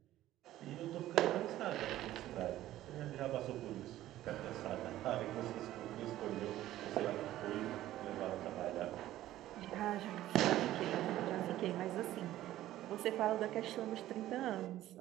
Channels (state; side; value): quieter; left; 14.2 dB